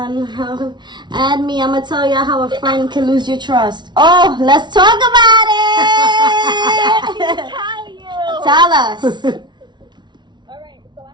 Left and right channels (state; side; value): late; left; 0.21 ms